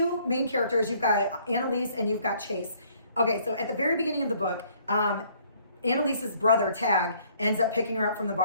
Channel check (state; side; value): inverted; both; correlation -0.62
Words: main characters. You've got Annalise and you've got Chase. Okay, so at the very beginning of the book, Annalise's brother, Tag, ends up picking her up from the